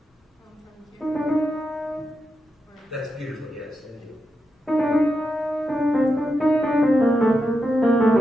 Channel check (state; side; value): normal; both; correlation 0.86